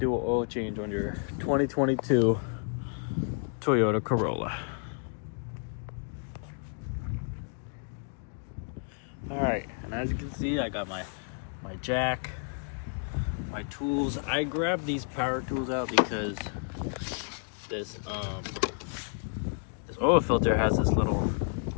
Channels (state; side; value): silent; right; 57 dB below the other